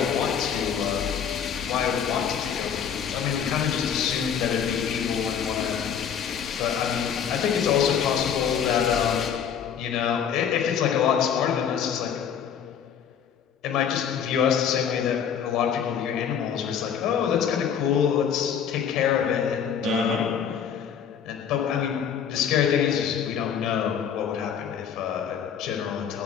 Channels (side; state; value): right; quieter; 7.9 dB